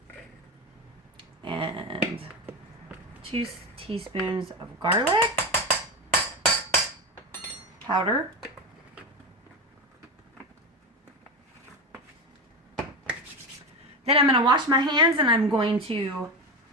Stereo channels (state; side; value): normal; both; correlation 0.19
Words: And 2 teaspoons of garlic powder. Then I'm going to wash my hands and I'm going to